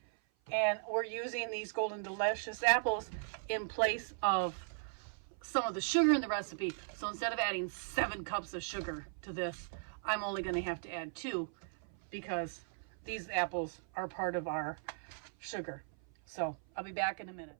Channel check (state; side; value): silent; left; 53 dB below the other